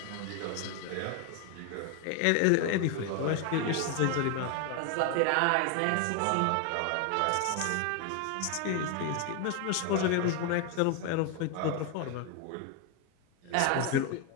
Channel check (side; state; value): both; different; correlation 0.01